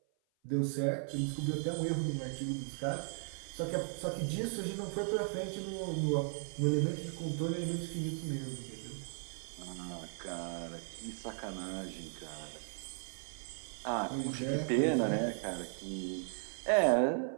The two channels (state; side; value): silent; left; 53 dB below the other